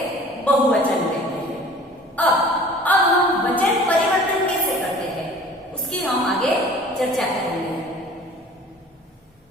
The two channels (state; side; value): normal; both; correlation 0.46